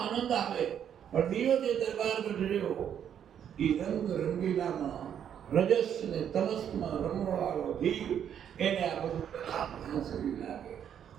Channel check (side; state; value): left; quieter; 9.0 dB